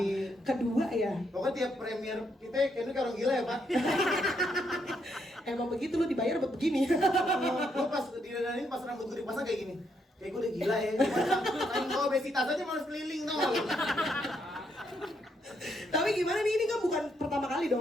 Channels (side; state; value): both; normal; correlation 0.76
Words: Kedua ya. Pokoknya tiap premier kita kayaknya kalau gila ya Pak. Emang begitu lu dibayar buat begini. Gue pas didandanin pas rambut gue dipasang kayak gini. Kayak gue udah gila ya. Main gue obesitas aja malas keliling tau. Tapi gimana nih, ini kan bukan pertama kali